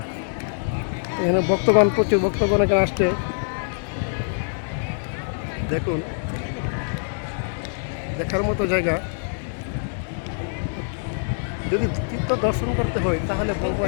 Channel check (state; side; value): silent; right; digital silence